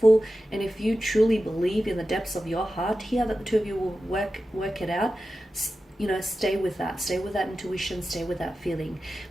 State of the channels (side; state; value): both; normal; correlation 0.93